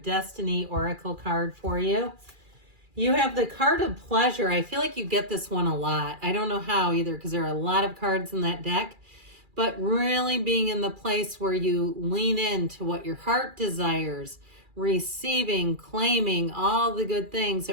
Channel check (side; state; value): left; late; 2.4 ms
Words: Destiny oracle card for you. You have the card of pleasure. I feel like you get this one a lot. I don't know how either because there are a lot of cards in that deck, but really being in the place where you lean into what your heart desires, receiving, claiming all the good things.